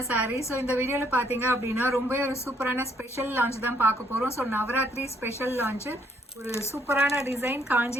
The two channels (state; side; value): normal; both; correlation 0.69